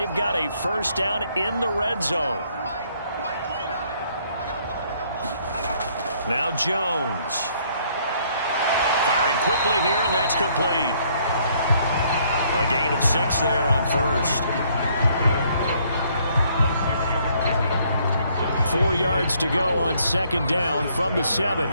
got a first down in the red zone. Now Jones. Firing quickly here, and that's complete. A gain of 6 there on first. 4 yards to go on 2nd down from the 7.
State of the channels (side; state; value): both; inverted; correlation -0.66